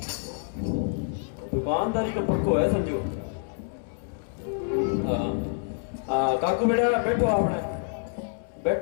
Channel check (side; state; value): right; silent; 60 dB below the other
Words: दुकानदारी का पक्को है समझो। काकू बेटा बैठो आपने,